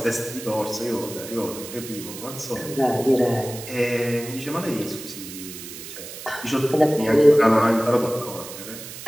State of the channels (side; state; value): right; noise; hiss, 12 dB below the sound